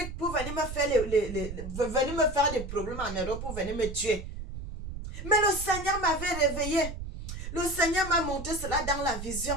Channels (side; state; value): right; noise; rumble, 8 dB below the sound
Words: pour venir me faire venir me faire des problèmes en Europe pour venir me tuer. Mais le Seigneur m'avait réveillé. Le Seigneur m'a montré cela dans la